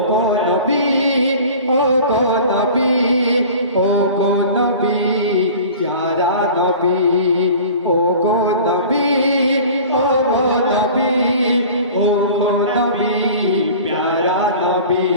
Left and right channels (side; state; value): both; inverted; correlation -0.41